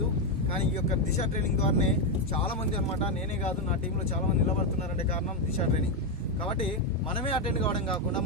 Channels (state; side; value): normal; both; correlation 0.05